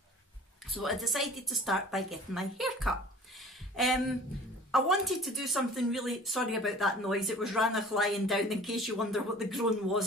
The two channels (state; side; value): normal; both; correlation 0.45